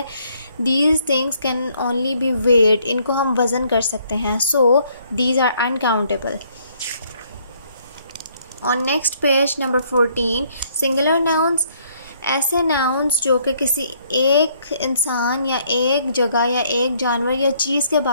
these things can only be weight, इनको हम वज़न कर सकते हैं। So these are uncountable. On next page number 14, singular nouns. ऐसे नाउन्स जो कि किसी एक इंसान या एक जगह या एक जानवर या चीज़ के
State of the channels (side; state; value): both; inverted; correlation -0.66